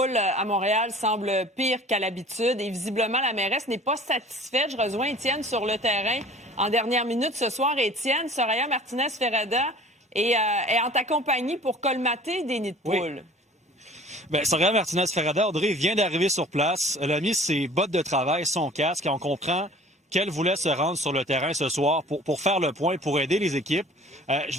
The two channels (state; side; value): normal; both; correlation 0.47